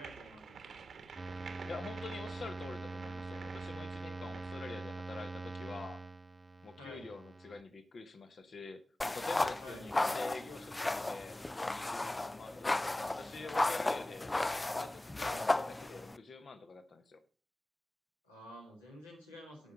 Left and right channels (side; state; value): both; normal; correlation 0.97